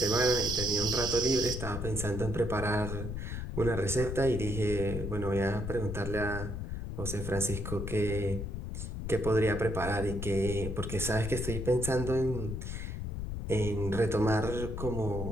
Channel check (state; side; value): noise; left; rumble, 5 dB below the sound